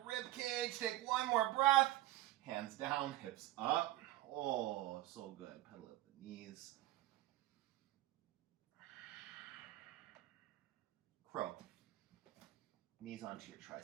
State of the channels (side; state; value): left; quieter; 16.1 dB